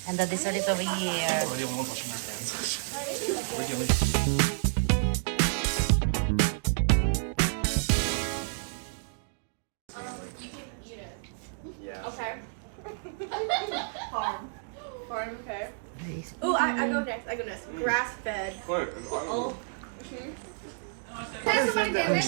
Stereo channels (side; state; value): left; silent; digital silence